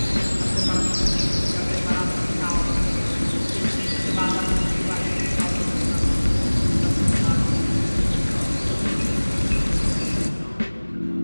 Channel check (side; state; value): both; inverted; correlation -1.00